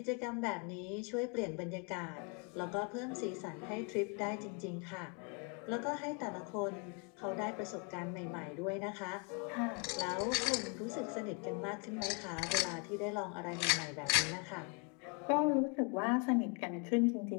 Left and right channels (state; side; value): quieter; right; 34.7 dB